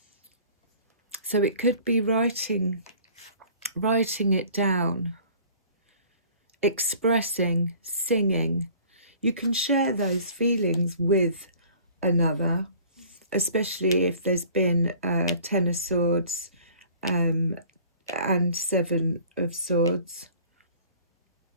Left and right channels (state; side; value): inverted; both; correlation -0.50